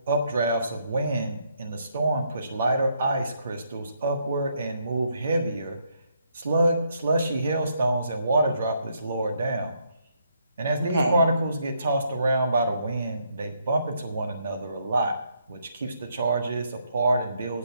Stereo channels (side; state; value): both; inverted; correlation -0.74